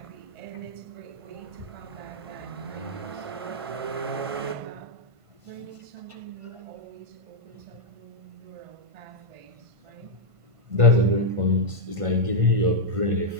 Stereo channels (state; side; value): late; left; 1.5 ms